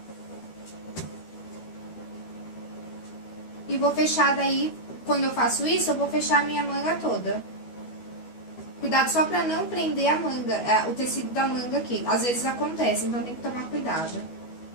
E vou fechar daí, quando eu faço isso, eu vou fechar a minha manga toda. Cuidado só pra não prender a manga, o tecido da manga aqui. Às vezes acontece, então tem que tomar cuidado.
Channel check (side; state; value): right; late; 12 ms